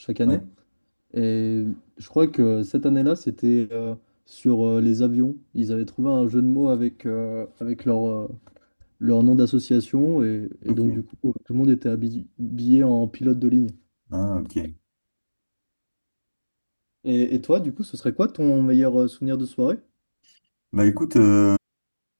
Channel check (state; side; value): inverted; both; correlation -1.00